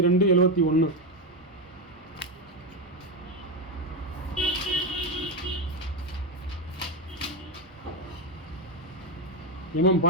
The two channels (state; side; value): normal; both; correlation 0.09